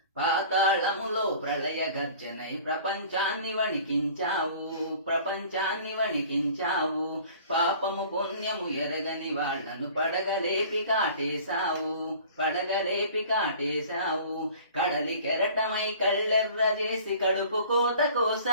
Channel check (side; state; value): both; inverted; correlation -0.47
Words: పాతాళములో ప్రళయ గర్జనై ప్రపంచాన్ని వణికించావు. పాపము పుణ్యము ఎరగని వాళ్లను పడగలేపి కాటేశావు. కడలి కెరటమై కళ్ళెర్ర చేసి కడుపు కోత